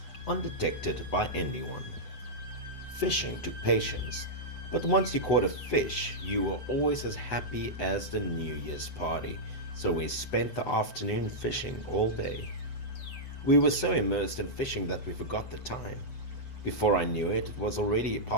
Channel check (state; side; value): late; right; 7.9 ms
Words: undetected by anyone. Fishing took patience, but once you caught a fish, you were always as happy as the New Year's party, so we spent the afternoon fishing all day. We were so immersed in fishing that we forgot the time. Before I knew it, it was already